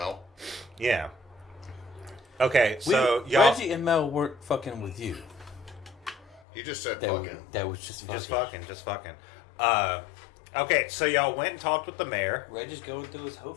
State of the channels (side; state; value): right; drops out; at 6.4 s